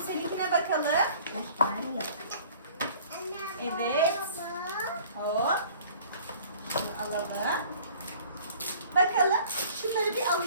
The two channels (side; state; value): both; inverted; correlation -0.50